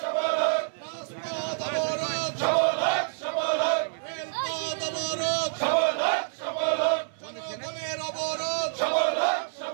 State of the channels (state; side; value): silent; left; 60 dB below the other